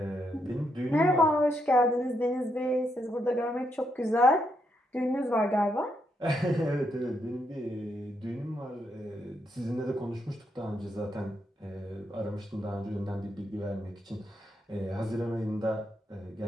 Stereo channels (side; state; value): both; normal; correlation 0.79